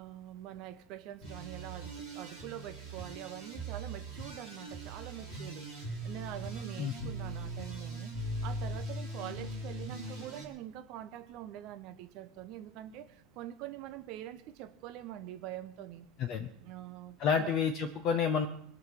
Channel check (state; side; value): normal; both; correlation 0.31